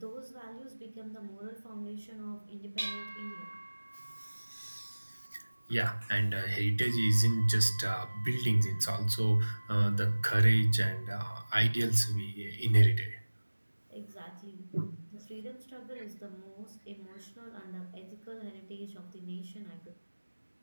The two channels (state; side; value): inverted; both; correlation -1.00